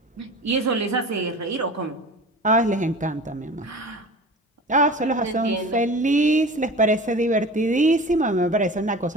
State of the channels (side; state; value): both; normal; correlation 0.36